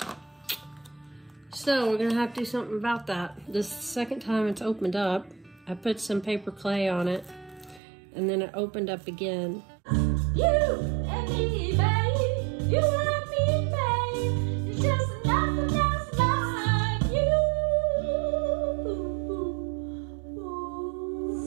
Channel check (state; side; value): drops out; left; at 7.8 s